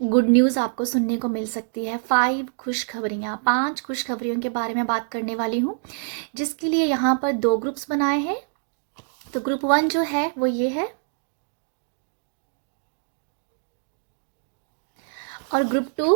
गुड न्यूज़ आपको सुनने को मिल सकती है। 5 खुशखबरियों के बारे में बात करने वाली हूँ, जिसके लिए यहाँ पर 2 ग्रुप्स बनाए हैं। तो ग्रुप 1 जो है वो ये है, और ग्रुप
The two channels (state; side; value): silent; left; digital silence